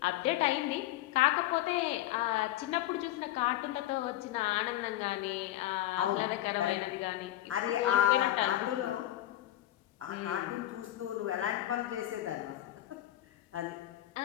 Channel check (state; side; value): quieter; right; 14.3 dB